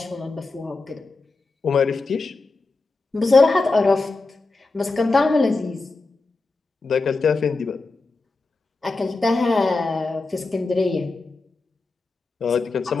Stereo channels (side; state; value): right; quieter; 3.6 dB